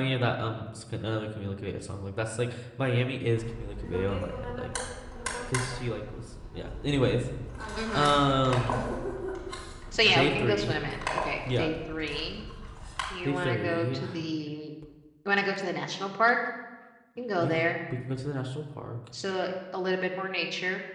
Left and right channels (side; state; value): both; identical; correlation 1.00